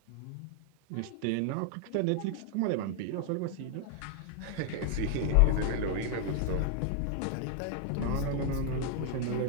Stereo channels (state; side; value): different; both; correlation 0.00